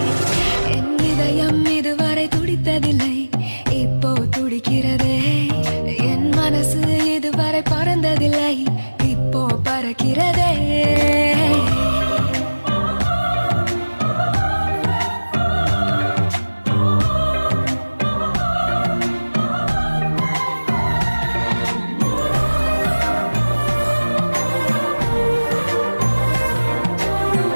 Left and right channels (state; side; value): inverted; both; correlation -1.00